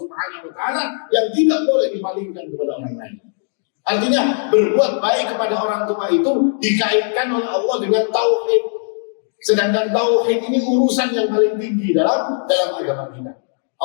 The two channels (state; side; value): silent; right; digital silence